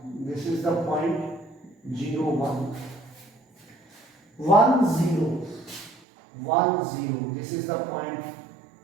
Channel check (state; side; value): drops out; left; at 6.0 s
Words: 1. This is the point 0, 1. 1, 0. 1, 0. This is the point